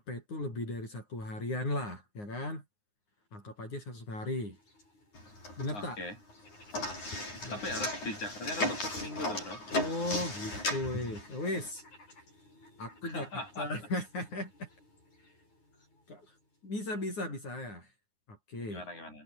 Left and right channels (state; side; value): late; right; 9.6 ms